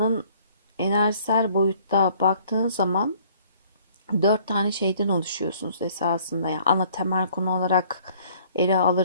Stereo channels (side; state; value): both; inverted; correlation -0.57